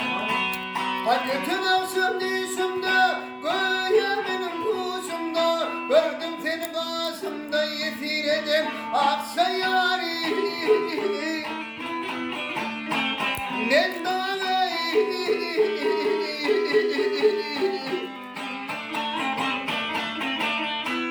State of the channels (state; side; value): identical; both; correlation 1.00